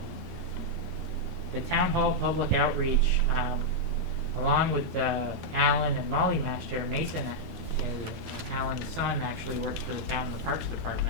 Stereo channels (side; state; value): both; normal; correlation -0.04